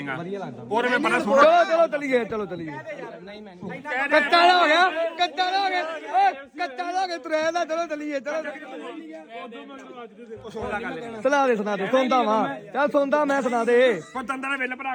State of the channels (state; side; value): identical; both; correlation 1.00